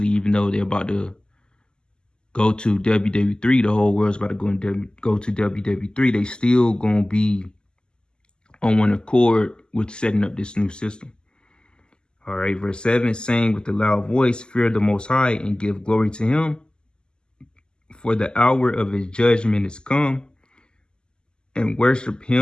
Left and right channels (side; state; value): right; late; 0.047 ms